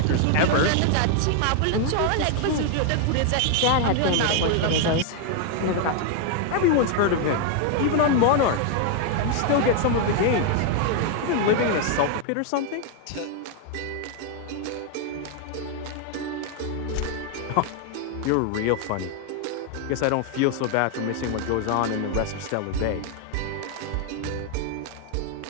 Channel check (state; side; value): different; both; correlation 0.00